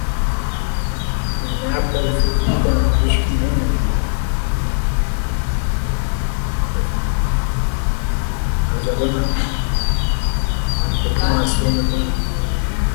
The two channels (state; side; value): silent; right; digital silence